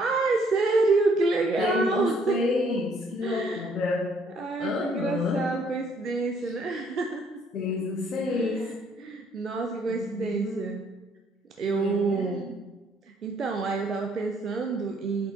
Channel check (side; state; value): both; normal; correlation 0.65